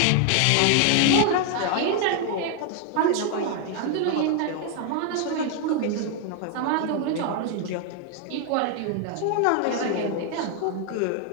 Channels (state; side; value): different; both; correlation 0.00